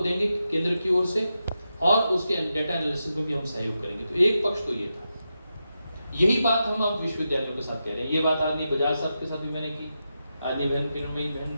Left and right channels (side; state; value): both; inverted; correlation -0.88